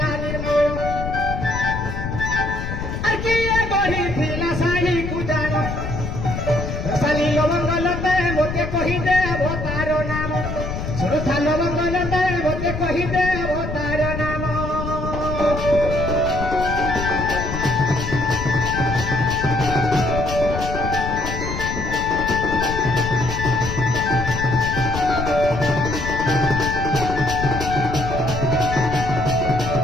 ନିର୍ମଳ আর কিয়ে গঢ়িଥିଲା শাড়ীକୁ ଜାଣ ରସାଲି ଲବଙ୍ଗଲତା ମୋତେ କହିଦେବ ତାର ନାମ ଶୁଣୁଥା ଲବଙ୍ଗଲତା ମୋତେ କହିଦେବ ତାର ନାମ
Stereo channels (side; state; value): left; noise; rumble, 5 dB below the sound